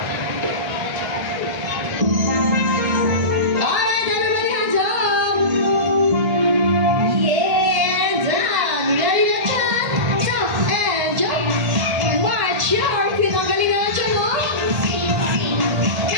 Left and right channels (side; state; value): left; late; 1.8 ms